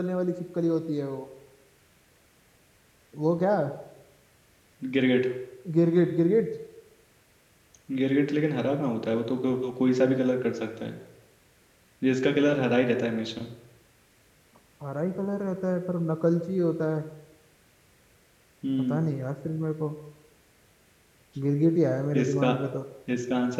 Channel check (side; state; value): both; identical; correlation 1.00